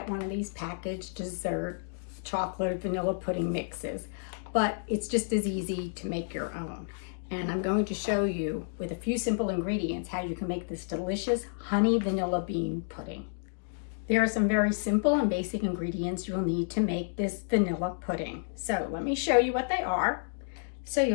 one of these packaged dessert chocolate vanilla pudding mixes, but it's just as easy to make your own. And I'm going to show you with a few simple ingredients how you can make this delicious honey vanilla bean pudding. There are some very simple and basic ingredients you'll need to make this vanilla pudding. So let me show you what they are. So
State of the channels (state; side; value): silent; right; digital silence